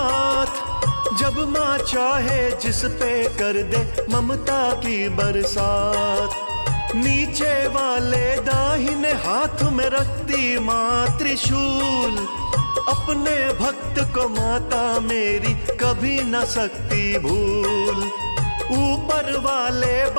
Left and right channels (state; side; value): inverted; both; correlation -1.00